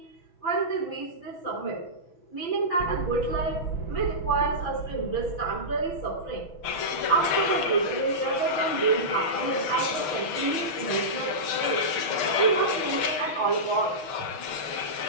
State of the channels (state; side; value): late; right; 6.7 ms